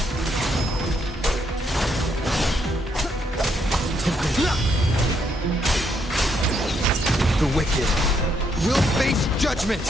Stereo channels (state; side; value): normal; both; correlation 0.74